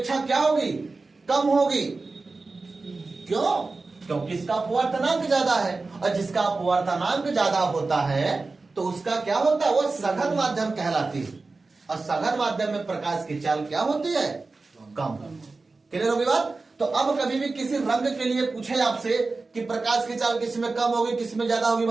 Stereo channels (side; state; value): left; quieter; 3.7 dB